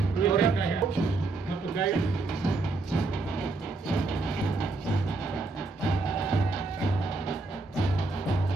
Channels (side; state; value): left; quieter; 3.4 dB